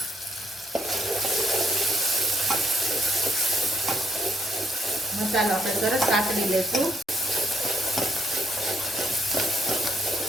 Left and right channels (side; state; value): both; normal; correlation 0.70